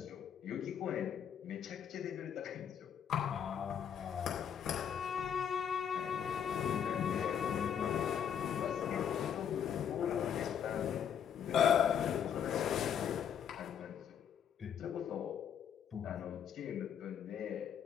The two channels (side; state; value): right; quieter; 8.5 dB